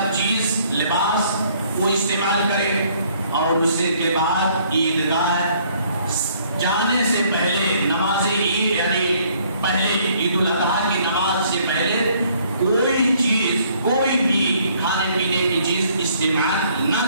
چیز لباس وہ استعمال کرے، اور اس کے بعد عیدگاہ جانے سے پہلے نماز عید یعنی پہلے عید الاضحیٰ کی نماز سے پہلے کوئی چیز، کوئی بھی کھانے پینے کی چیز استعمال نہ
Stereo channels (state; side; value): inverted; both; correlation -0.63